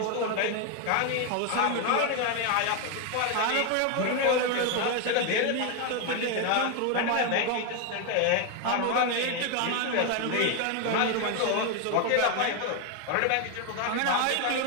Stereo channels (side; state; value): both; different; correlation 0.01